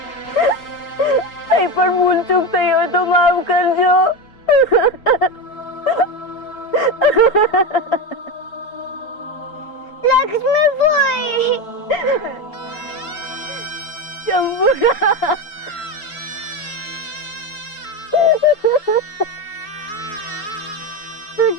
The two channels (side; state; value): right; late; 4.7 ms